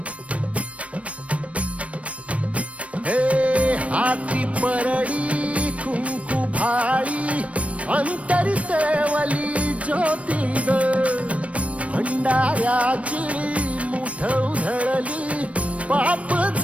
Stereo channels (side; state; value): left; late; 0.064 ms